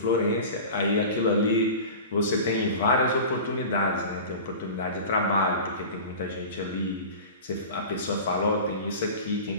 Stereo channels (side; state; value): both; inverted; correlation -0.34